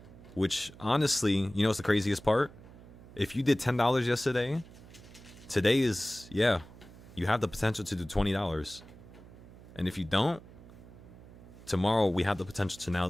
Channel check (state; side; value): noise; right; hum, 19 dB below the sound